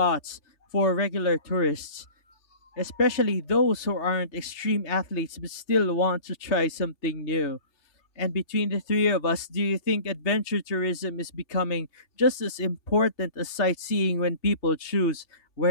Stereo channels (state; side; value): late; right; 3.3 ms